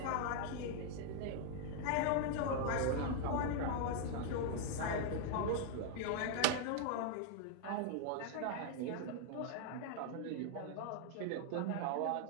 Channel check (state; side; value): different; both; correlation 0.00